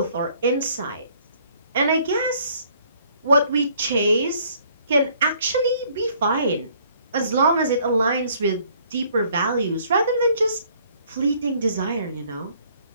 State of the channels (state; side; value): inverted; both; correlation -0.61